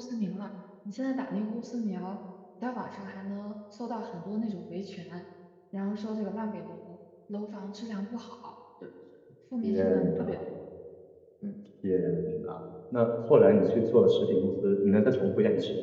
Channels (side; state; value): both; identical; correlation 1.00